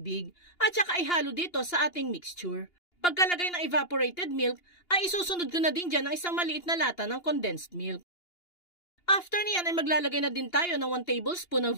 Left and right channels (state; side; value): late; right; 2.8 ms